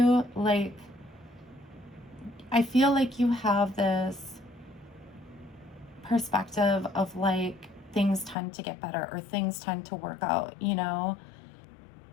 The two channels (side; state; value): right; drops out; at 8.3 s